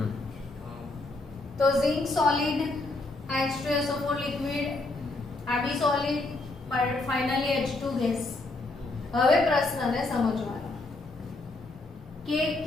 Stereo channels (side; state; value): right; quieter; 3.1 dB